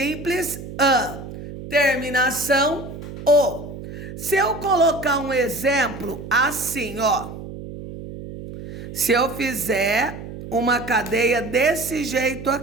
an. Terminação, o. Se eu colocar um exemplo assim, ó. Se eu fizer uma cadeia desse jeito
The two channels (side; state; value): right; noise; hum, 11 dB below the sound